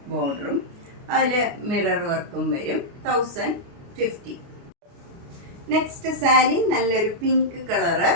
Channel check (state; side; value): late; left; 29 ms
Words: ബോർഡറും അതിൽ മിറർ വർക്കും വരും. 1050. നെക്സ്റ്റ് സാരി നല്ലൊരു പിങ്ക് കളറ്,